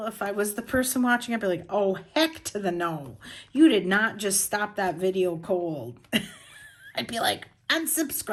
if I was the person watching. I'd be like, oh, heck to the no. You did not just stop that video cold. I'd be like,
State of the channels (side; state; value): both; identical; correlation 1.00